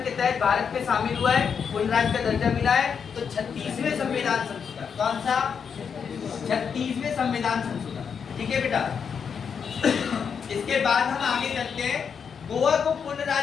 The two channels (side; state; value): right; quieter; 6.7 dB